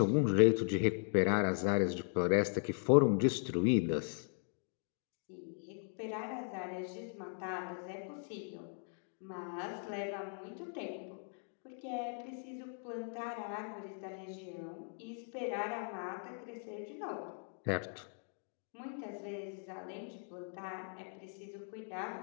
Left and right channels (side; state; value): right; silent; 52 dB below the other